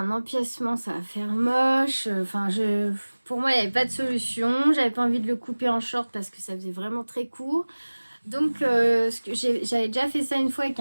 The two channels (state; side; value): inverted; both; correlation -1.00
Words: empiècement, ça va faire moche. Enfin, pour moi, il n'y avait pas de solution. J'avais pas envie de le couper en short parce que ça faisait vraiment très court. Donc, j'avais déjà fait ça une fois avec